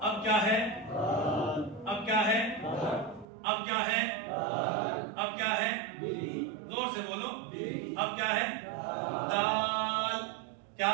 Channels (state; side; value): drops out; left; at 3.2 s